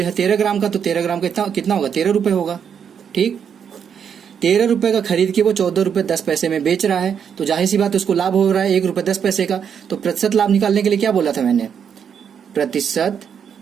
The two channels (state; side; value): quieter; left; 7.6 dB